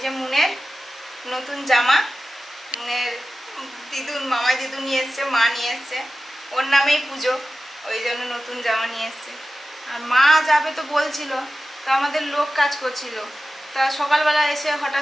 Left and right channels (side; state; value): both; normal; correlation 0.94